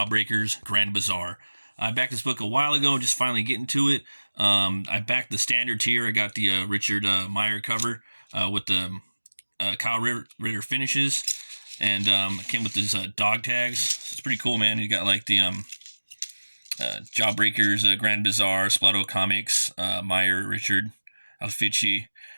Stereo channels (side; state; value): both; inverted; correlation -1.00